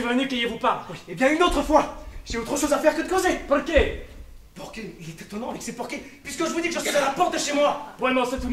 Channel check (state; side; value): identical; both; correlation 1.00